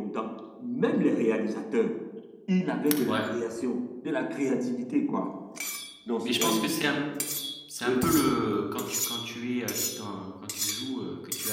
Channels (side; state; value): both; identical; correlation 1.00